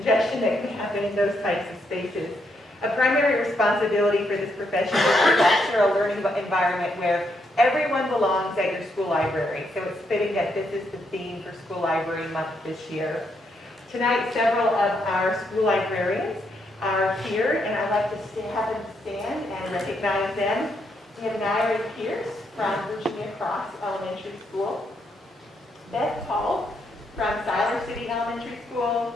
that can happen in those types of spaces. A primary responsibility for this profession is to foster a learning environment where everyone belongs at your school library. So it's fitting that this is the theme for School Library Month this year. Tonight, several of our school librarians are here, and I'd like to have them stand and recognize them. We have Nairi Pierce from Virginia Cross Elementary School, Beth Paul from Siler City Elementary School,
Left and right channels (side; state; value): both; normal; correlation 0.77